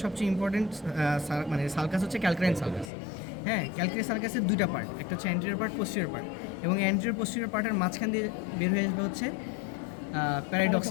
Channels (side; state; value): right; drops out; at 2.9 s